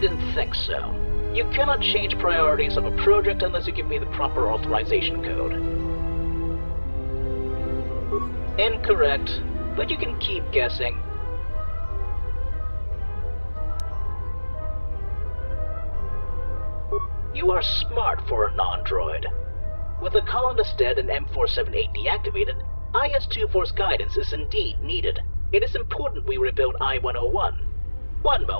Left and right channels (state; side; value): inverted; both; correlation -1.00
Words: think so. You cannot change priorities of a project unless you give me the proper authorization code. Incorrect, but you can keep guessing. You are smart for a non-droid. With the colonist dead and M478 deactivated, IS-2 guidance is indeed needed. It is important we rebuild I-101. One